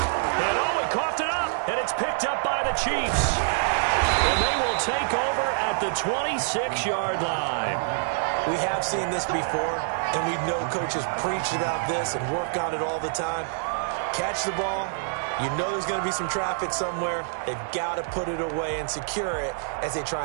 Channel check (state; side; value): silent; left; 61 dB below the other